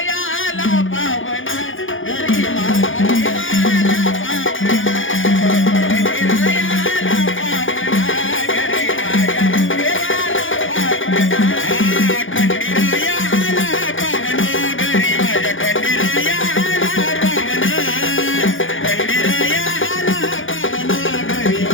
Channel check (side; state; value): right; late; 0.58 ms